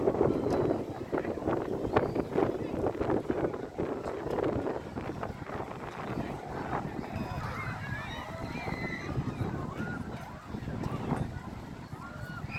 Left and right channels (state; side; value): identical; both; correlation 1.00